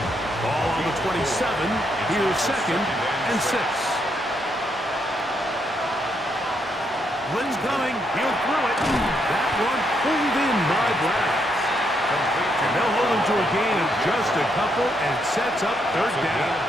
Ball on the 27. Here's 2nd and 6. Blitz coming. He'll throw it. That one pulled in by Browns. And they'll hold him to a gain of just a couple and sets up 3rd down.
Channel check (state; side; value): normal; both; correlation 0.77